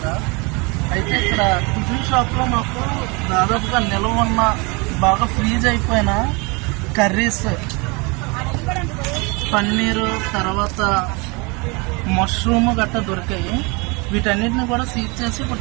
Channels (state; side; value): quieter; left; 28.7 dB